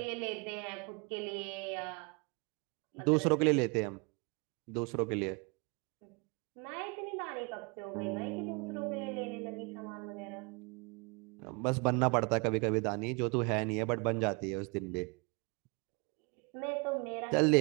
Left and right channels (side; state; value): left; quieter; 31.4 dB